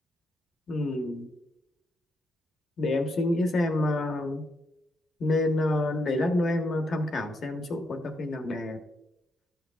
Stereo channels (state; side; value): normal; both; correlation 0.79